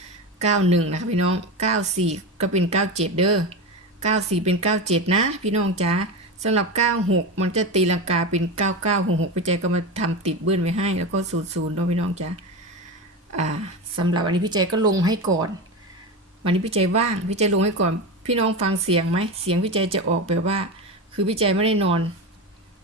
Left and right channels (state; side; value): normal; both; correlation 0.21